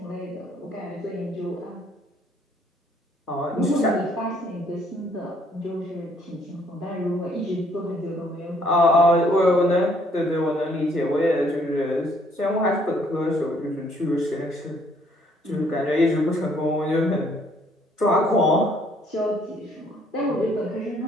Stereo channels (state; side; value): normal; both; correlation 0.65